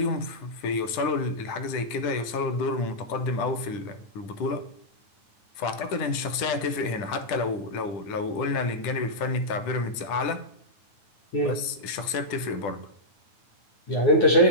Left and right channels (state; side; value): late; right; 10 ms